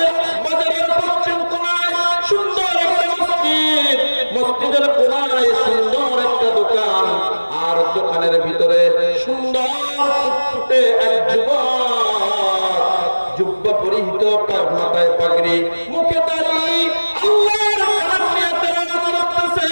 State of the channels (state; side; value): inverted; both; correlation -1.00